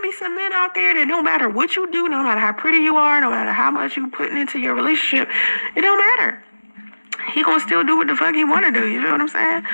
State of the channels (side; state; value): both; inverted; correlation -1.00